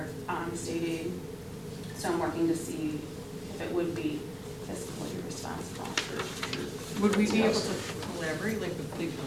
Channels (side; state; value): both; identical; correlation 1.00